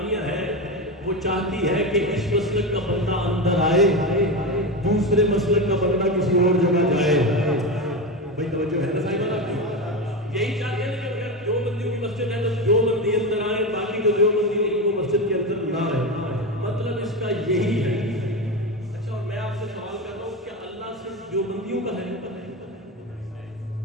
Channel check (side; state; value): both; normal; correlation 0.18